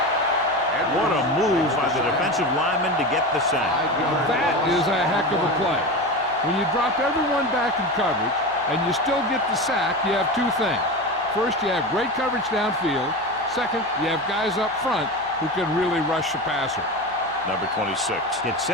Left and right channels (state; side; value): noise; left; hum, 28 dB below the sound